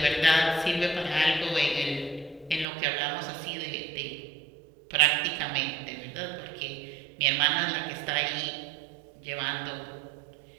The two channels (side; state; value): left; drops out; at 2.7 s